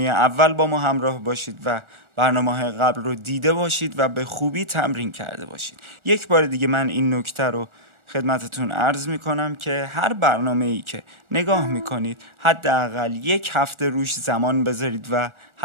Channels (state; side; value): late; left; 1.4 ms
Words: با ما همراه باشید و برنامه‌های قبل رو دیده باشید و به خوبی تمرین کرده باشید. یک بار دیگه من این نکته رو خدمتتون عرض میکنم که هر برنامه‌ای که نگاه میکنید حداقل یک هفته روش زمان بذارید و